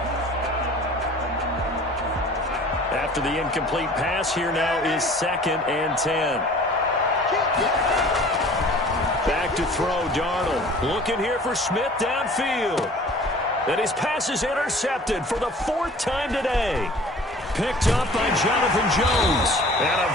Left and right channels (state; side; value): normal; both; correlation 0.47